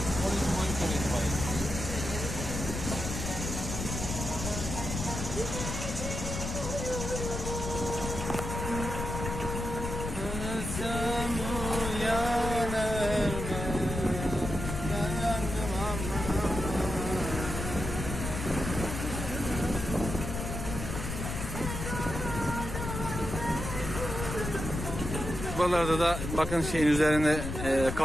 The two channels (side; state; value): left; noise; rumble, 5 dB below the sound